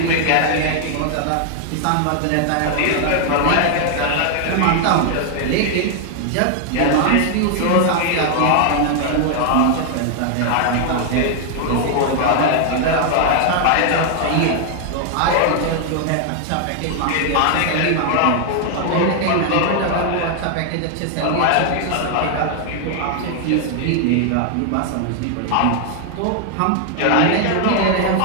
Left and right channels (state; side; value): different; both; correlation 0.00